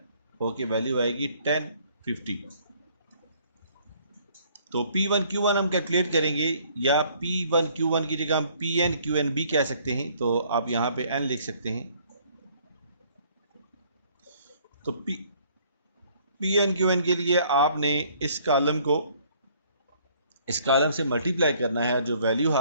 होके वैल्यू आएगी 1050। तो P1 Q1 हम कैलकुलेट करेंगे या P1 Q1 की जगह हम PN QN भी कह सकते हैं, तो आप यहाँ पे N लिख सकते हैं। तो PN QN के लिए आपने इस कॉलम से मल्टीप्लाई करना है, जो वैल्यू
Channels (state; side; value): inverted; both; correlation -0.61